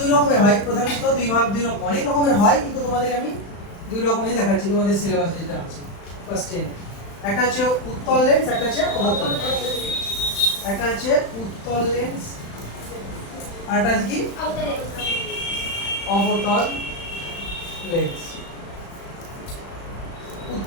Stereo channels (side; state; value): right; late; 35 ms